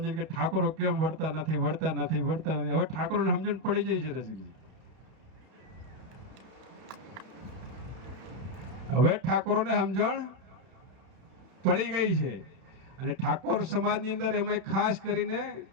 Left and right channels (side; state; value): left; late; 31 ms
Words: કે ઠાકોરો કેમ વળતા નથી. હવે ઠાકોરોને સમજણ પડી જાય છે રસિકજી. હવે ઠાકોરોને સમજણ પડી ગઈ છે. અને ઠાકોર સમાજની અંદર એમાં ખાસ કરીને